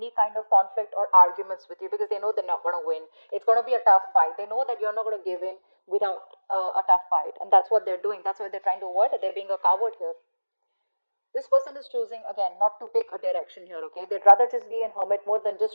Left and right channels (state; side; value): inverted; both; correlation -1.00